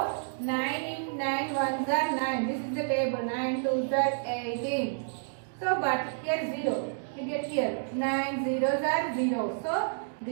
9 in 9 ones are 9. This is the table. 9 twos are 18. So, but here 0. We get here 9 zeros are 0. So,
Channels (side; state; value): left; silent; digital silence